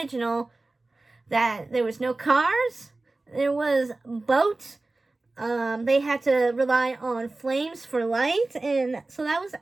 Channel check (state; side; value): quieter; left; 3.2 dB